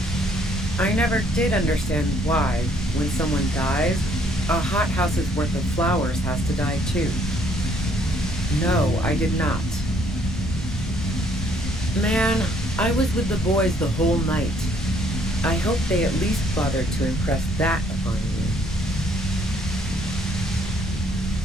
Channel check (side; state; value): both; normal; correlation 0.65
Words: I never did understand why, when someone dies, a hothouse's worth of flowers has to die too. No, I did not. Man, I was with the boys the whole night. I hope they at least bothered to impress that upon you.